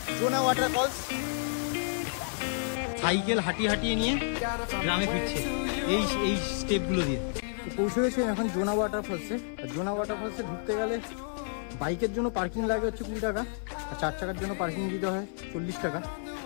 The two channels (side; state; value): right; silent; 58 dB below the other